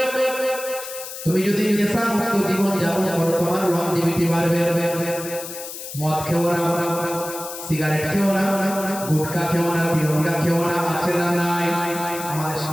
তুমি যদি নেশামুক্ত জীবন যাপন করো তোমার লংজিভিটি বাড়বে। মদ খেও না, সিগারেট খেও না, গুটখা খেও না, তিরঙ্গা খেও না, আছে না নাই? আমাদের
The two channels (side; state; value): left; noise; hiss, 10 dB below the sound